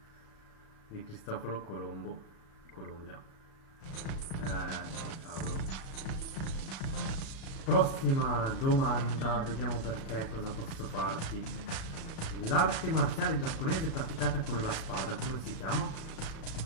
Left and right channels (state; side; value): late; right; 37 ms